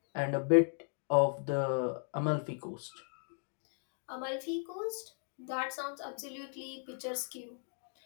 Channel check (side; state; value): right; silent; 54 dB below the other